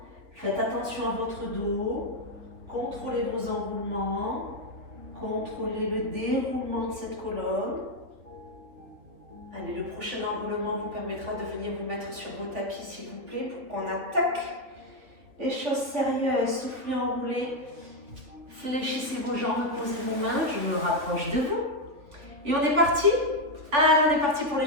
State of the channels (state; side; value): late; left; 3.7 ms